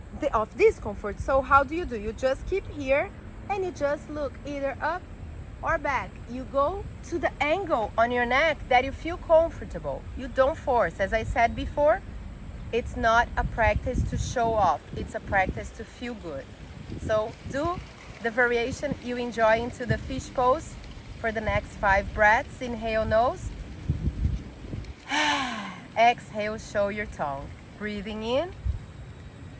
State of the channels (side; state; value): both; identical; correlation 1.00